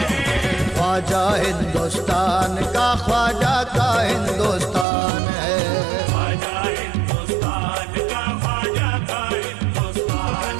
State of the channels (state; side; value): drops out; left; at 4.9 s